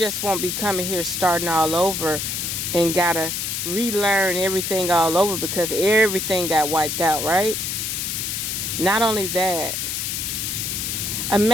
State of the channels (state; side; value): noise; left; hiss, 2 dB below the sound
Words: won't be coming here starting all over and gotta relearn everything all over because everything got wiped out, right? Not only that,